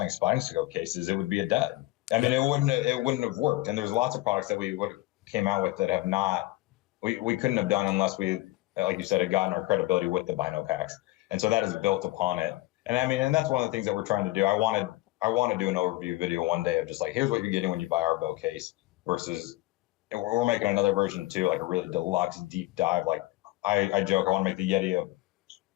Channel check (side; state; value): right; quieter; 19.2 dB